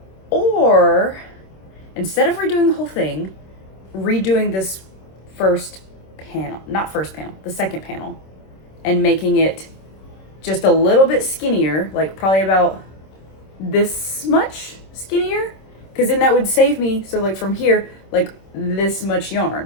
Or instead of redoing the whole thing, redoing this the second panel, and making it just a little bit skinnier, like probably about this much skinnier, because then that would save me, so like from here, like this much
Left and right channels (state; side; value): late; right; 26 ms